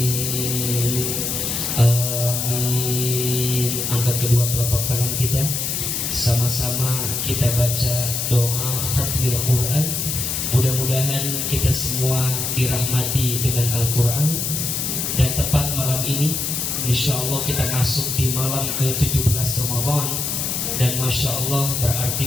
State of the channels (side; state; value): left; noise; hiss, 1 dB below the sound